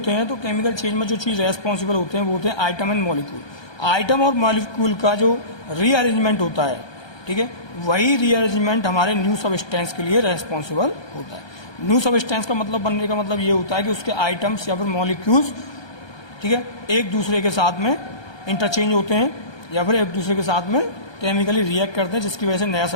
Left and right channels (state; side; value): late; right; 1.2 ms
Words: हैं तो केमिकल चेंज में जो चीज़ रेस्पॉन्सिबल होते हैं वो होते हैं आइटम एंड मॉलिक्यूल। आइटम और मॉलिक्यूल का जो रीअरेंजमेंट होता है, ठीक है, वही रीअरेंजमेंट हमारे न्यू सबस्टेंस के लिए रेस्पॉन्सिबल होता है। न्यू सबस्टेंस का मतलब बनने का मतलब ये होता है कि उसके आइटम्स या फिर मॉलिक्यूल्स, ठीक है, एक दूसरे के साथ में इंटरचेंज होते हैं या फिर एक दूसरे के साथ में केमिकली रिएक्ट करते हैं, जिसकी वजह से नया